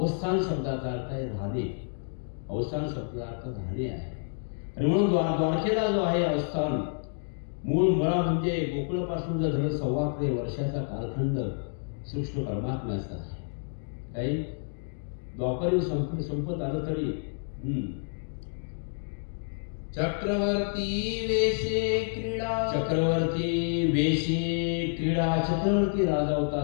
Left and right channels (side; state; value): right; silent; digital silence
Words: शब्दाचा अर्थ आहे राहणे. अवस्थान शब्दाचा अर्थ राहणे आहे. आणि म्हणून द्वारकेला जो आहे अवस्थान, मूळ मुळा म्हणजे गोकुळापासून जर धरलं 15 वर्षाचा कालखंड सूक्ष्म परमात्म्याचा आहे. काही द्वापरी संपत आलं तरी चक्रवर्ती वेशे क्रीडा, चक्रवर्ती वेशे क्रीडा. चक्रवर्ती राजा होता.